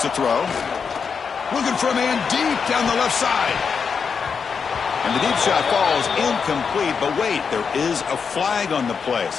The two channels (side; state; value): right; quieter; 6.0 dB